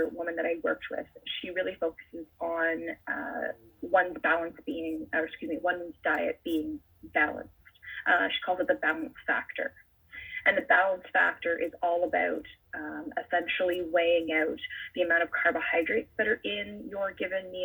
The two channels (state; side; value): identical; both; correlation 1.00